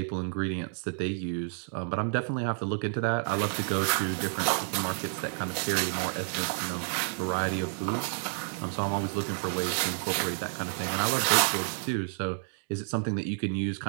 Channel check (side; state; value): left; silent; 58 dB below the other